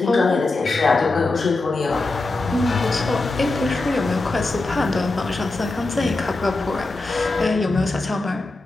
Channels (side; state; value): right; quieter; 3.2 dB